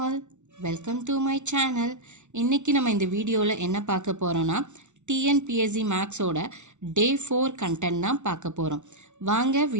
all, welcome to my channel. இன்றைக்கி நம்ம இந்த வீடியோவில் என்ன பார்க்க போகிறோன்னா டிஎன்பிஎஸ்சி மேக்ஸோட டே 4 கண்டென்ட் தான் பார்க்க போகிறோம். வாங்க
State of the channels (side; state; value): left; late; 0.83 ms